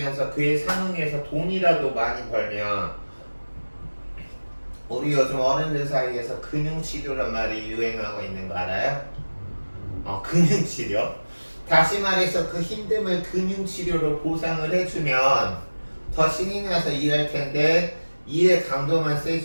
그에 상응해서 돈이라도 많이 벌면 우리 요즘 어른들 사이에서 금융치료란 말이 유행하고 있는 거 알아요? 금융치료. 다시 말해서 그 힘듦을 금융치료로 보상을 해주면 더 신이 나서 일할 텐데 일의 강도만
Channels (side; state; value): both; inverted; correlation -1.00